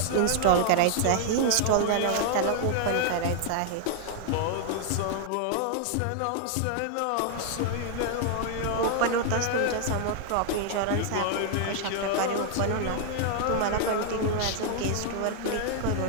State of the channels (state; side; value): different; both; correlation 0.00